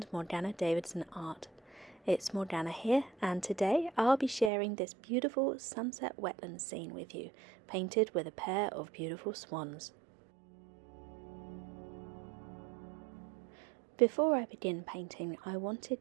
Morgana Davidson Art. It's Morgana here and today I'll be sharing this beautiful sunset wetland scene with you, painted with a pair of beautiful swans. Before I begin painting, I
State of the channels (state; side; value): drops out; left; at 4.5 s